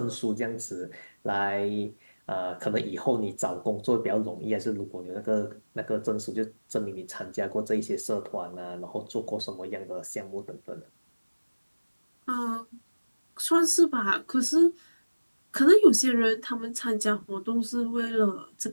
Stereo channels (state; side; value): inverted; both; correlation -1.00